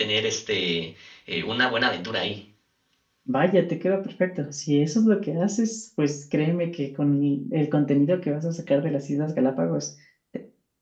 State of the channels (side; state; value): both; identical; correlation 1.00